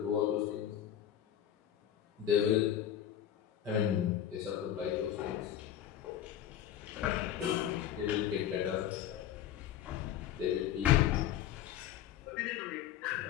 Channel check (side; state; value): right; quieter; 10.7 dB